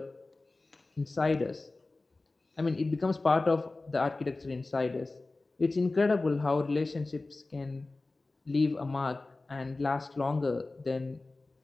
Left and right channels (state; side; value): quieter; right; 3.3 dB